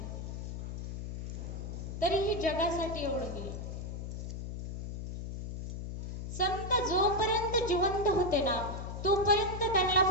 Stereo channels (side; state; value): left; noise; hum, 6 dB below the sound